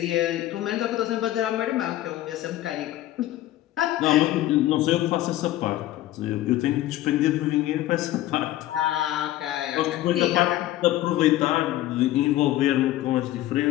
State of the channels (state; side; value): quieter; right; 14.6 dB